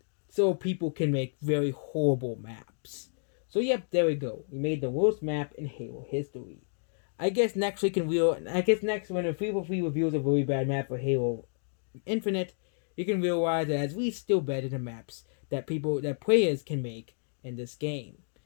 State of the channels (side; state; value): right; silent; digital silence